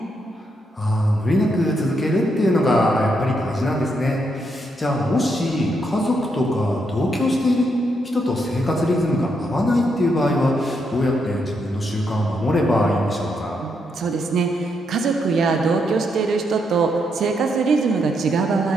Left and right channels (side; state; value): both; normal; correlation 0.79